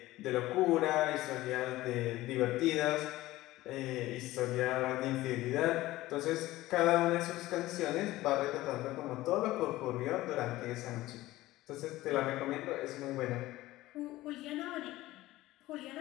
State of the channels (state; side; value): quieter; right; 17.1 dB